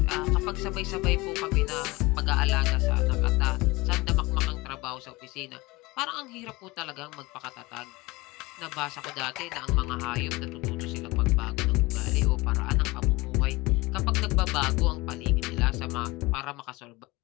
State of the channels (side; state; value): right; quieter; 22.3 dB